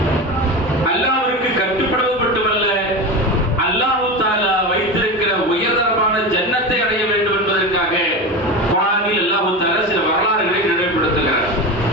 அல்லாஹ்விற்கு கட்டுப்படுவது மட்டுமல்ல, அல்லாஹ் தஆலா வைத்திருக்கிற உயர்தரமான ஜன்னத்தை அடைய வேண்டும் என்பதற்காக குர்ஆனில் அல்லாஹ் தஆலா சில வரலாறுகளை நினைவுபடுத்துகிறார்.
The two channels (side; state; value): both; normal; correlation 0.24